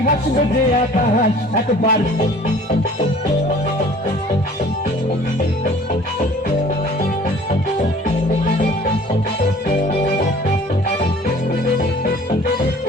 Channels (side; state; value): both; normal; correlation 0.49